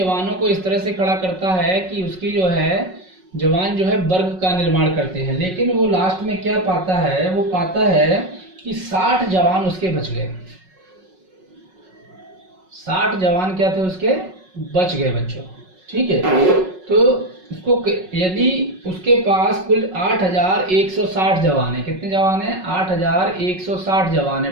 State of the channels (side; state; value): left; late; 5.4 ms